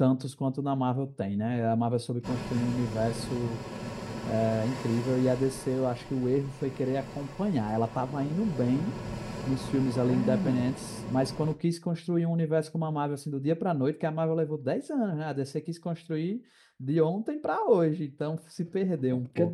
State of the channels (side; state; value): both; identical; correlation 1.00